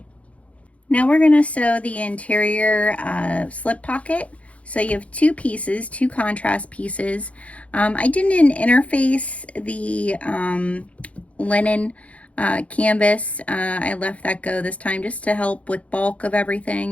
Now we're going to sew the interior slip pocket. So you have 2 pieces, 2 contrast pieces. I didn't interface the linen canvas. I left that go this time just to help with bulk of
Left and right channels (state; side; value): late; right; 0.065 ms